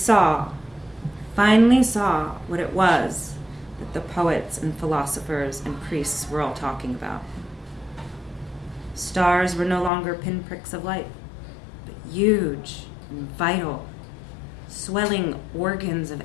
finally saw what it was that the poets and philosophers and priests were all talking about. Stars were no longer pinpricks of light, but huge and vital, swelling organs of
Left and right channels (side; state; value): right; drops out; at 9.9 s